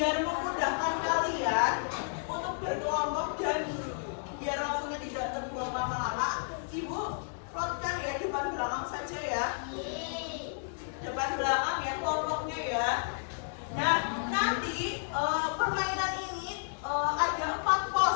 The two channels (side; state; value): right; silent; digital silence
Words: memudahkan kalian untuk berkelompok dan biar waktunya tidak terbuang lama-lama, ibu plotkan ya depan belakang saja ya. Depan belakang ya kelompoknya ya. Nah, nanti permainan ini ada 4